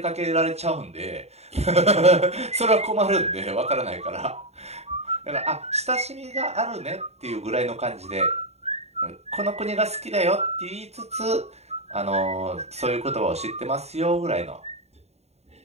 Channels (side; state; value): left; late; 0.31 ms